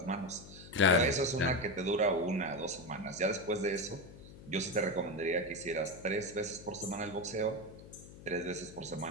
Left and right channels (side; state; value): left; noise; hum, 17 dB below the sound